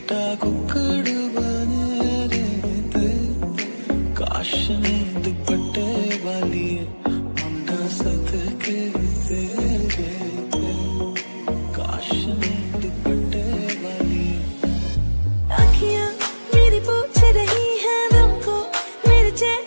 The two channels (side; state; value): both; inverted; correlation -1.00